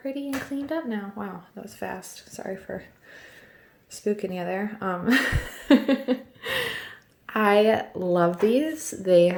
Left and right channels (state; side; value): identical; both; correlation 1.00